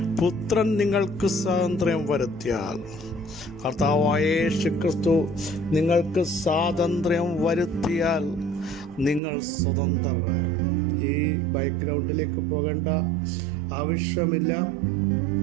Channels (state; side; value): drops out; left; at 9.2 s